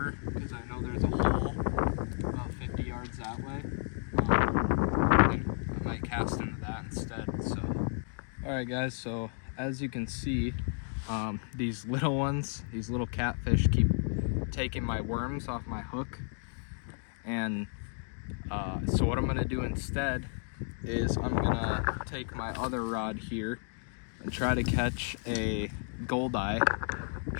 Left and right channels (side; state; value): right; silent; 56 dB below the other